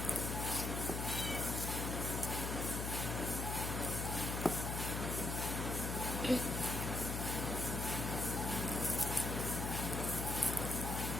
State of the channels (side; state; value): left; noise; hum, 2 dB below the sound